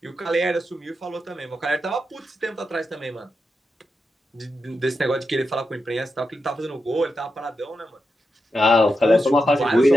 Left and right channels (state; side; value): normal; both; correlation 0.87